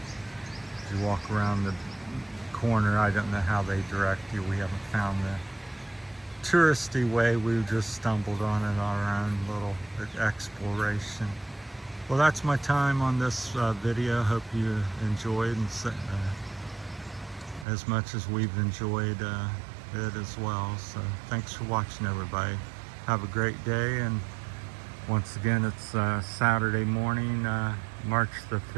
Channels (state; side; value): drops out; left; at 17.7 s